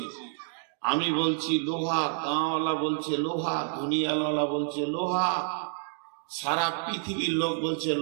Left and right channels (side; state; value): left; silent; digital silence